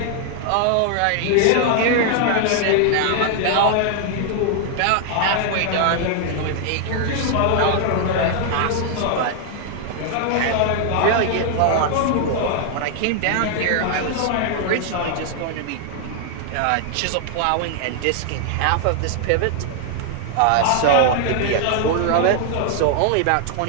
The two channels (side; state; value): both; different; correlation 0.00